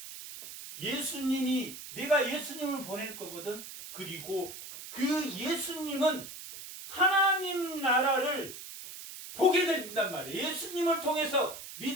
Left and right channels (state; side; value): noise; right; hiss, 12 dB below the sound